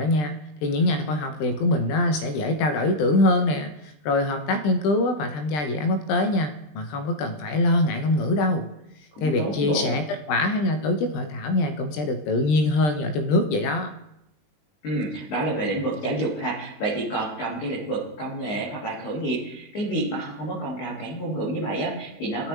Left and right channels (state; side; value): late; right; 20 ms